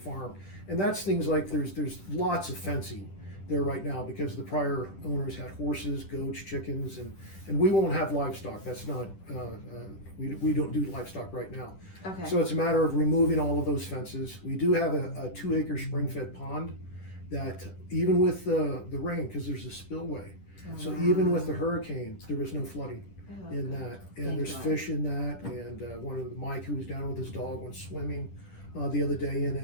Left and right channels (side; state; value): right; late; 10 ms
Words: and that's things like there's lots of fencing there right now because the prior owners had horses, goats, chickens, and we won't have livestock. That's not we don't do livestock right now. Okay. So it's a matter of removing all of those fences. We do have a 2-acre spring-fed pond that even with the rain, because there's a spillway, so even with the hurricane, there was no flooding in that, and Thank there's God. fish in that, and Mike, who was down with his dog, went swimming the other day in